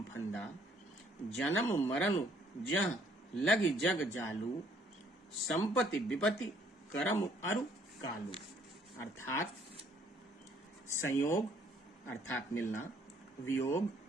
फंदा, जन्म मरण जह लग जग जालू, संपत्ति विपत्ति करम अरु कालू। अर्थात संयोग अर्थात मिलना, वियोग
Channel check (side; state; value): both; normal; correlation 0.64